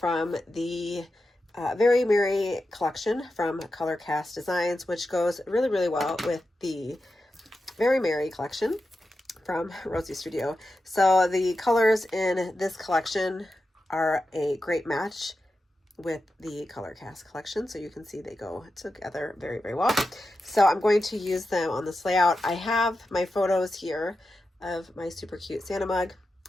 the Very Merry collection from Colorcast Designs, which goes really well with the Very Merry collection from Rosie Studio. So the colors in this collection are a great match with the Colorcast collection, so you can see they go together very well. So I'm going to use them on this layout. I have my photos here of my super cute Santa mug,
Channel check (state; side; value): normal; both; correlation 0.90